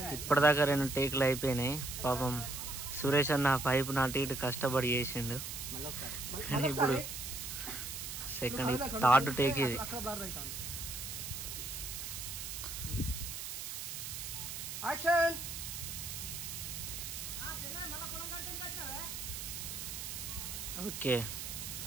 ఇప్పటిదాకా 2 టేకులు అయిపోయినాయి. పాపం సురేష్ అన్న పైపు నాటి ఇటు కష్టపడి చేసిండు. ఇప్పుడు సెకండ్ 3rd టేక్ ఇది. ఓకే,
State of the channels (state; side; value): noise; right; hiss, 6 dB below the sound